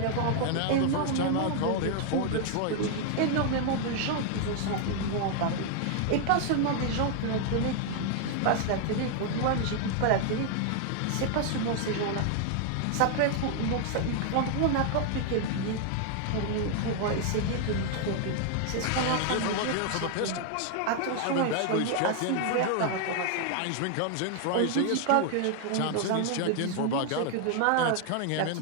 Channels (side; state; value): both; different; correlation 0.00